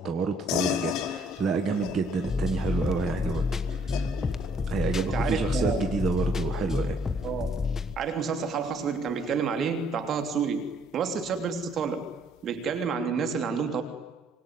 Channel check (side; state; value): both; normal; correlation 0.64